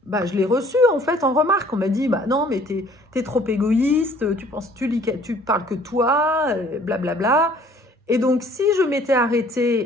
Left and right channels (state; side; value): normal; both; correlation 0.56